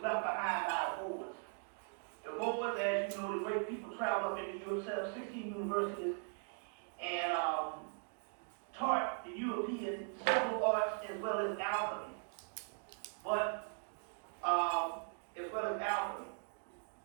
left behind by the Moors. The Moors, as you know, the great people traveled up into Europe, set up 16 universities, and taught the Europeans several arts as well as alchemy.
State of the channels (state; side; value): silent; left; 51 dB below the other